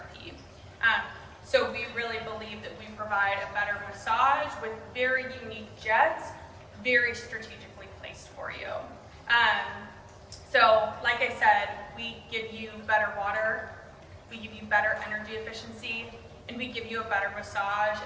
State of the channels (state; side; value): identical; both; correlation 1.00